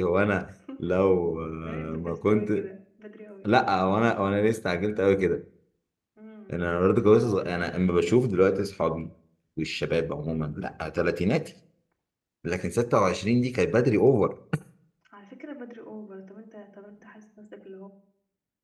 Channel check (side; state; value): both; identical; correlation 1.00